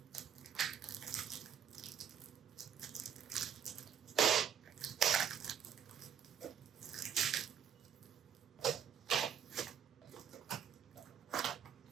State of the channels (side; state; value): left; quieter; 8.2 dB